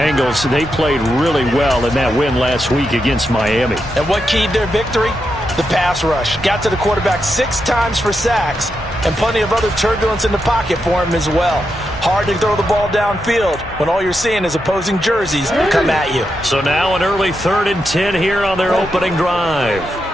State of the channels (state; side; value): normal; both; correlation 0.85